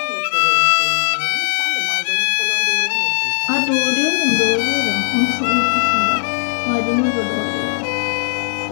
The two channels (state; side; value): silent; right; digital silence